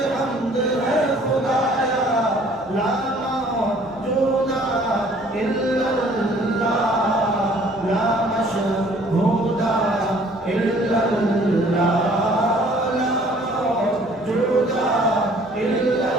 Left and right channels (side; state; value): right; noise; hum, 27 dB below the sound